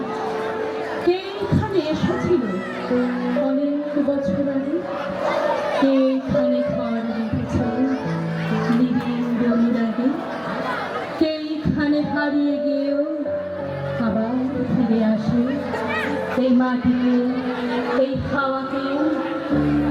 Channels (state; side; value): identical; both; correlation 1.00